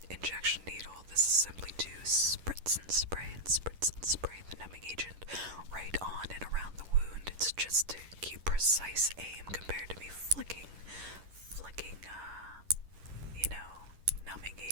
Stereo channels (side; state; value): left; late; 10 ms